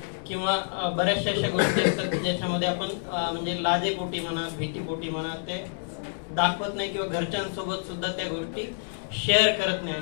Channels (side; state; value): right; silent; 60 dB below the other